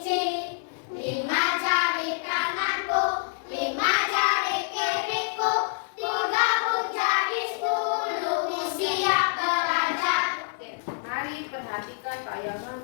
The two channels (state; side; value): silent; right; digital silence